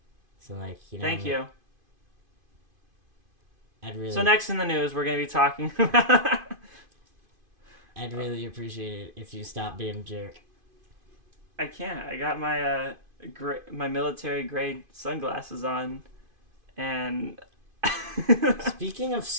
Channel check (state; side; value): late; left; 2.5 ms